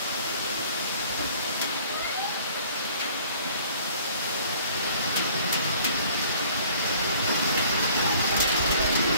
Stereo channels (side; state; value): both; inverted; correlation -0.54